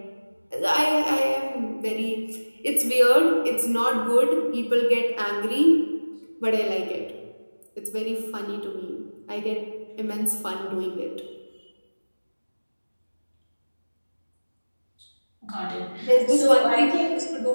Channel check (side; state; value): both; inverted; correlation -1.00